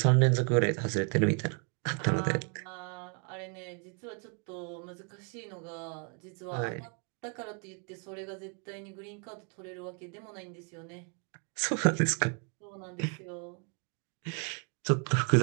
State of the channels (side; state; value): left; quieter; 39.1 dB